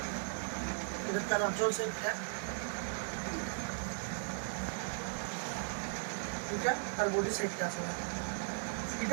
এটা তার আঁচল সেটা এটা তার বডি সেটটা আছে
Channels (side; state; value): left; silent; digital silence